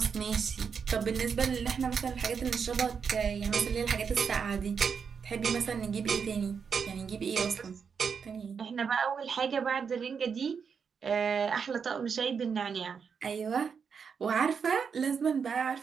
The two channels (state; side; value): quieter; left; 6.3 dB